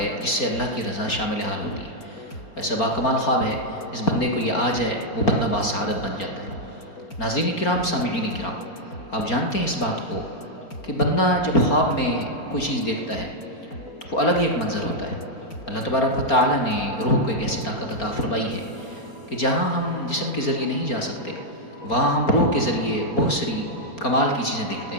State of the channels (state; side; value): late; right; 4.3 ms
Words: جس سے اللہ کی رضا شامل حال ہوتی ہے۔ ایسا باکمال خواب ہے جس بندے کو یہ آ جائے وہ بندہ باسعادت بن جاتا ہے۔ ناظرین کرام، سامعین کرام، آپ جانتے ہیں اس بات کو کہ بندہ جب خواب میں کوئی چیز دیکھتا ہے تو وہ الگ ہی ایک منظر ہوتا ہے۔ اللہ تبارک و تعالیٰ نے روح کو ایک ایسی طاقت عطا فرمائی ہے کہ جہاں ہم جسم کے ذریعے نہیں جا سکتے وہاں ہم روح کے ذریعے بہت ساری کمال کی چیزیں دیکھتے